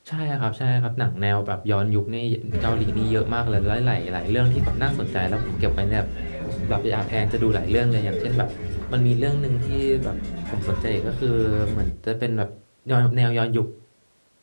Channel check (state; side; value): inverted; both; correlation -1.00